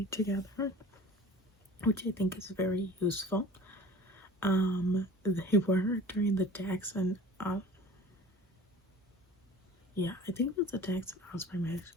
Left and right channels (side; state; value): both; normal; correlation 0.43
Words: together, which I think is very useful. They were during the Dax and I think it was the Dax and Ospreay match.